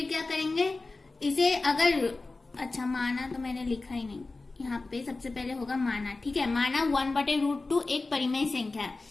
क्या करेंगे इसे, अगर अच्छा माना तो मैंने लिखा ही नहीं, यहाँ पे सबसे पहले होगा माना। ठीक है, माना 1/√2 एक परिमेय संख्या है।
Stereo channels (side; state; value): right; quieter; 3.5 dB